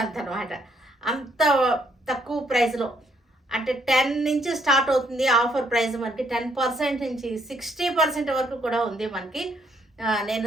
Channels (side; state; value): both; normal; correlation 0.71